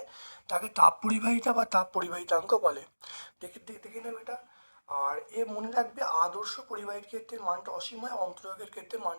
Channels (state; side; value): inverted; both; correlation -1.00